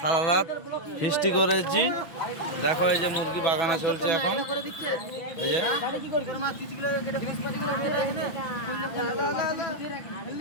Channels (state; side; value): late; right; 6.0 ms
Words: রাত ফিস্টি করেছি। দেখো এই যে মুরগি বাগানা চলছে এখন। এই যে